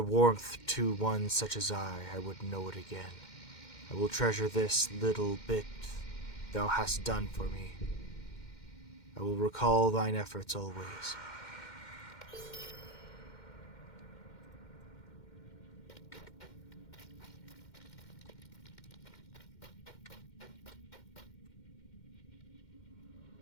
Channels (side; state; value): right; late; 2.1 ms